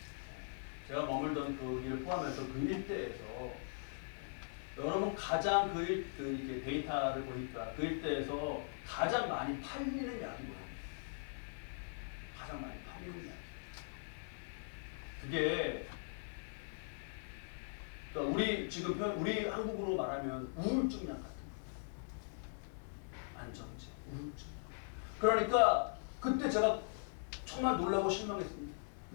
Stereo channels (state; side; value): silent; right; digital silence